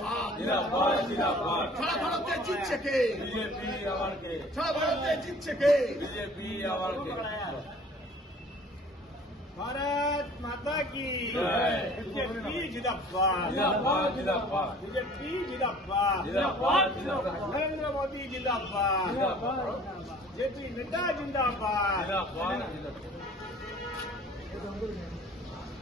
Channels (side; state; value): both; normal; correlation 0.50